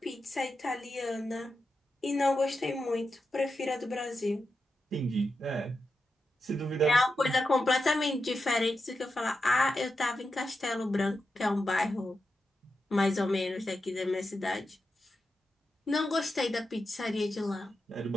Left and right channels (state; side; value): normal; both; correlation 0.89